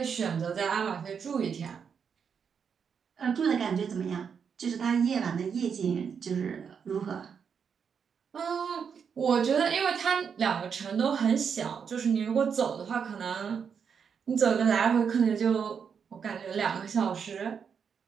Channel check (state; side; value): quieter; left; 6.7 dB